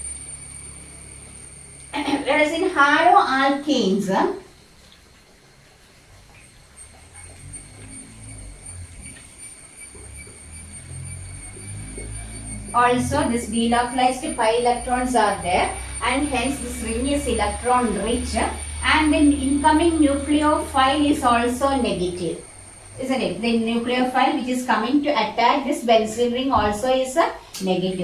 Whereas in haloalkanes, also this delocalized pi electrons are there, and hence this ring is electron rich, and the incoming nucleophile is also negative, isn't it? The nucleophile which is coming to attack this benzene ring also is a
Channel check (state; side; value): identical; both; correlation 1.00